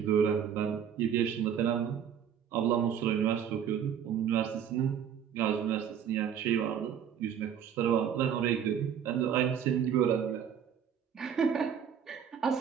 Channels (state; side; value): quieter; left; 8.4 dB